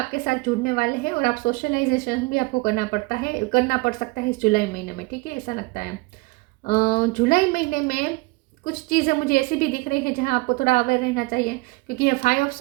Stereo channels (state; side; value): quieter; left; 24.8 dB